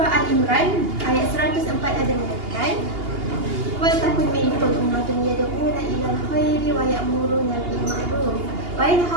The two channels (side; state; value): left; late; 2.8 ms